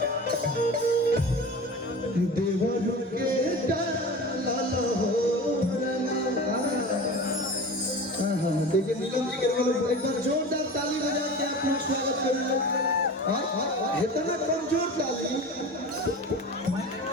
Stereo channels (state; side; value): normal; both; correlation 0.34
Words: देवर के डाला हो रंगा। देखिए नीलम जी के एक बार जोरदार ताली बजा के आप लोग स्वागत करेंगे। इतना कमजोर ताली